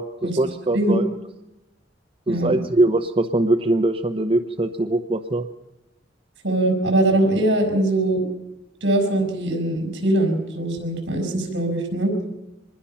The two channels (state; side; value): normal; both; correlation 0.52